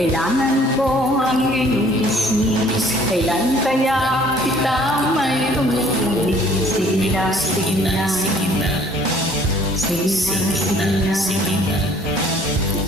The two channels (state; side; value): normal; both; correlation 0.57